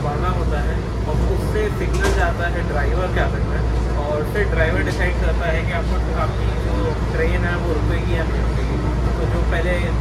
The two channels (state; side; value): identical; both; correlation 1.00